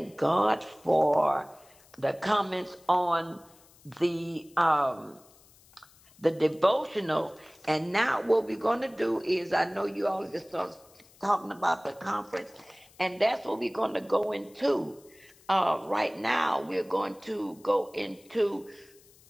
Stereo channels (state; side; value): noise; left; hiss, 27 dB below the sound